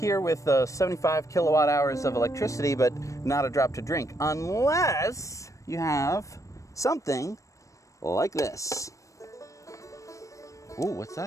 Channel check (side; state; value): right; late; 0.15 ms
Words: with 75 kilowatt hours of electricity, but not a drop to drink, unless you have something like this. Ooh, what's